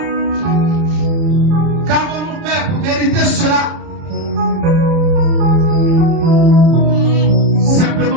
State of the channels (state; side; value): late; left; 29 ms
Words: Qu'avons-nous fait pour mériter cela?